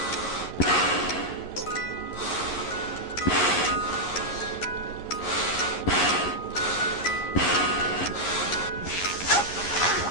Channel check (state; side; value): late; right; 11 ms